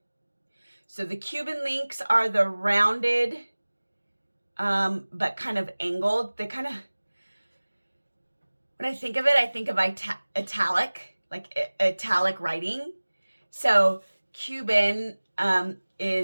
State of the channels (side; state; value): both; inverted; correlation -1.00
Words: So the Cuban links are the rounded, but kind of angled. They kind of, when I think of it, I think of italic. Like italic writing. So Cuban